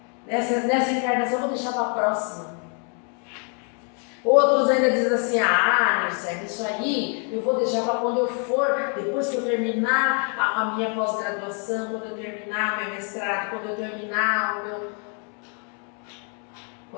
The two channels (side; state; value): right; quieter; 40.0 dB